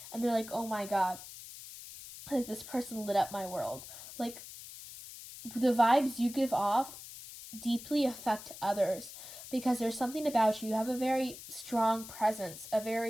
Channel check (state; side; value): noise; left; hiss, 14 dB below the sound